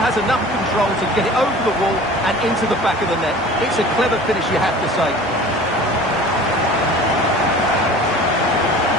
has enough control to get it over the wall and into the back of the net. It's a clever finish, you have to say.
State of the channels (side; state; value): both; normal; correlation 0.42